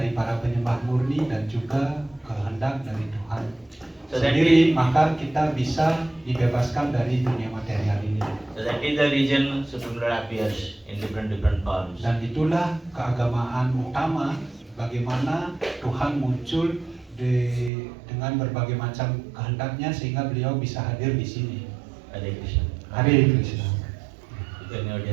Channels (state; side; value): drops out; left; at 17.7 s